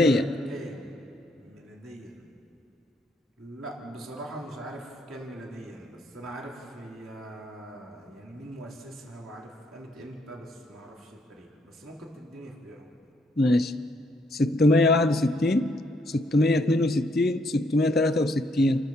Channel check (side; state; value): both; normal; correlation 0.71